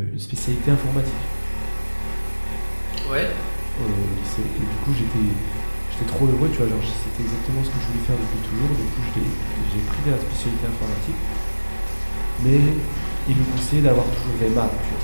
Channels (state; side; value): inverted; both; correlation -1.00